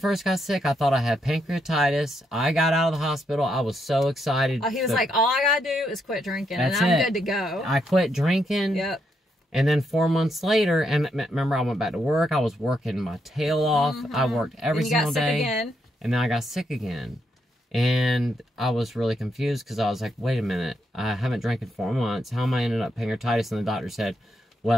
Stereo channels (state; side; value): normal; both; correlation 0.79